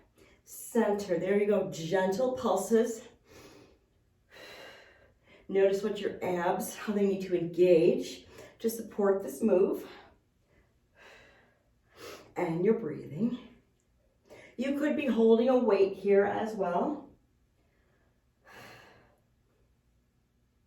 center. There you go, gentle pulses. Notice what your abs, how they need to engage to support this move. And your breathing. You could be holding a weight here as well.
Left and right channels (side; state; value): both; identical; correlation 1.00